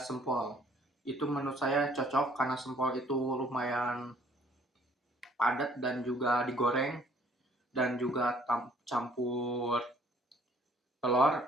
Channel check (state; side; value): normal; both; correlation 0.59